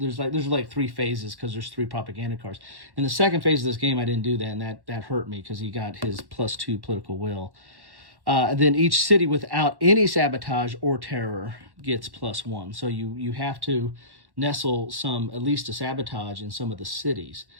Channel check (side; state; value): left; late; 1.1 ms